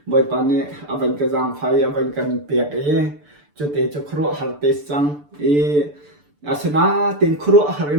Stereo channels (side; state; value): left; late; 6.8 ms